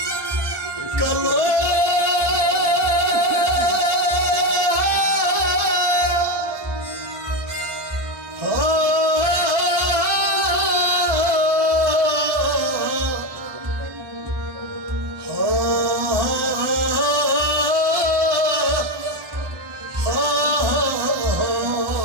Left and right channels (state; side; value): late; left; 1.2 ms